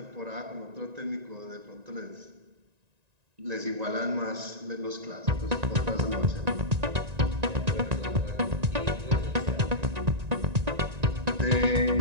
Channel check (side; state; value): left; late; 1.9 ms